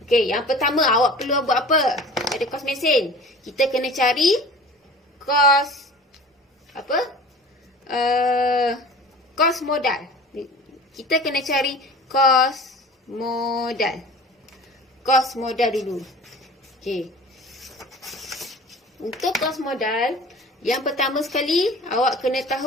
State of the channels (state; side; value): normal; both; correlation 0.41